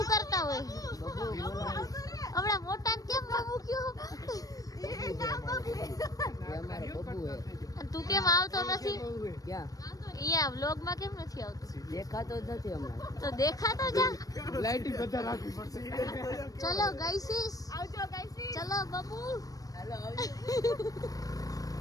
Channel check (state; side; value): late; right; 0.18 ms